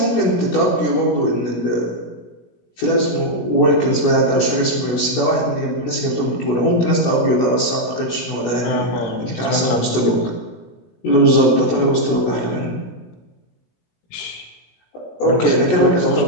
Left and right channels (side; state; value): right; late; 16 ms